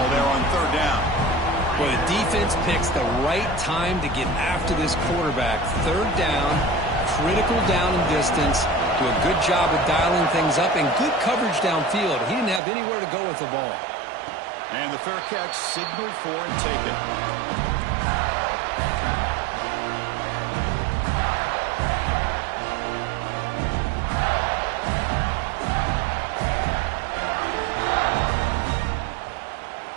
there on 3rd down. Well, the defense picks the right time to get after this quarterback. 3rd down, critical down and distance. Do a good job of dialing things up and good coverage downfield. He didn't have anywhere to go with the ball. And the fair catch signaled for and taken.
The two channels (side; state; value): left; drops out; at 12.6 s